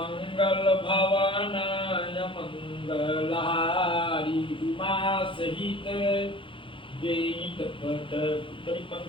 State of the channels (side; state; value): right; late; 0.25 ms